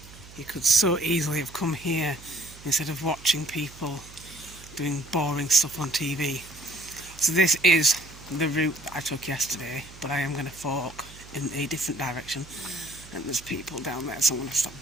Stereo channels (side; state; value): right; noise; hum, 19 dB below the sound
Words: You could so easily have come here instead of watching people doing boring stuff on TV. So this is the route that I took yesterday, but I am going to fork in a different direction, and there's people down there, so I'm going to stop